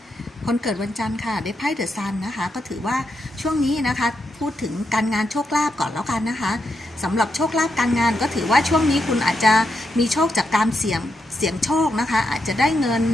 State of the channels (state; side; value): normal; both; correlation 0.83